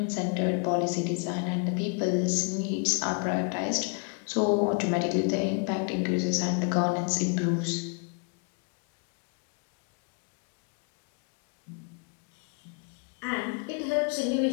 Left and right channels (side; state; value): right; quieter; 36.1 dB